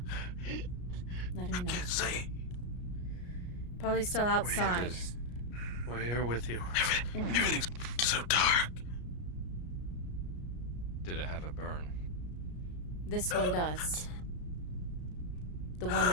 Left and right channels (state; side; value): late; right; 33 ms